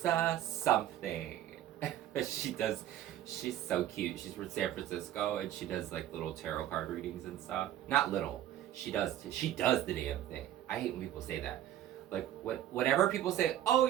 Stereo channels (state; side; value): quieter; left; 12.1 dB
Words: something. She's so cute. She's from San Francisco, and she does like little tarot card readings and stuff. Not little. She does the damn thing. I hate when people say that. Like, whenever people say, oh,